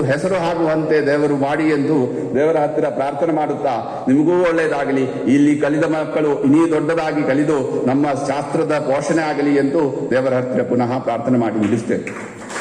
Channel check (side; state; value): both; identical; correlation 1.00